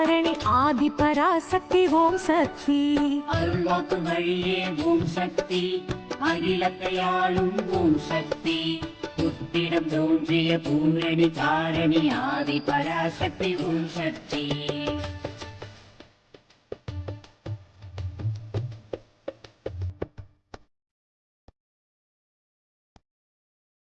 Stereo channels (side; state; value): both; identical; correlation 1.00